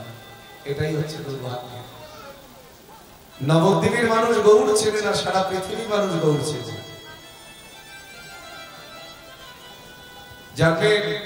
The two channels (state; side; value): identical; both; correlation 1.00